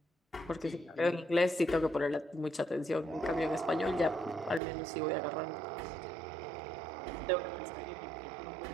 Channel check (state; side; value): drops out; left; at 4.6 s